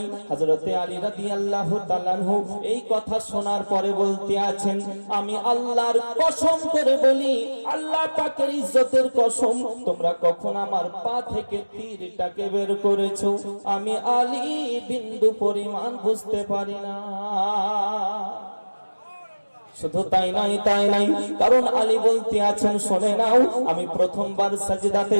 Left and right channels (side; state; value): both; inverted; correlation -1.00